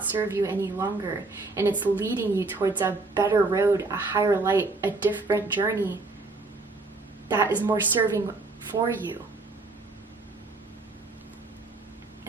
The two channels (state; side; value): quieter; left; 3.5 dB